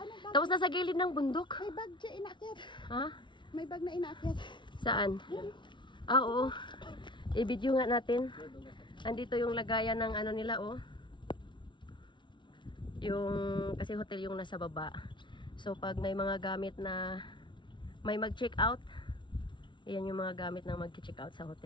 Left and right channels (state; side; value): late; right; 0.23 ms